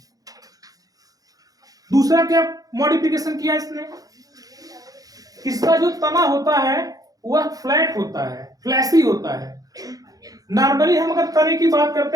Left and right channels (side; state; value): left; late; 0.18 ms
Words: दूसरा क्या मॉडिफिकेशन किया इसने, इसका जो तना होता है वह फ्लैट होता है, फ्लैसी होता है। नॉर्मली हम अगर तने की बात